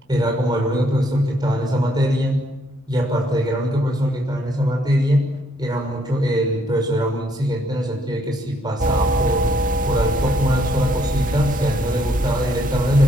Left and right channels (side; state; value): both; normal; correlation 0.69